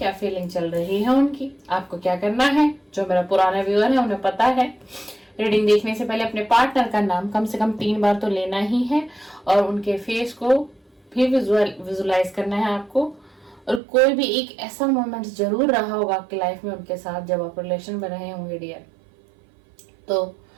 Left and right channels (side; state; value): left; drops out; at 13.8 s